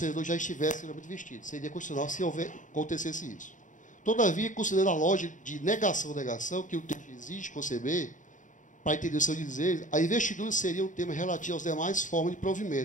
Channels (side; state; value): right; late; 0.37 ms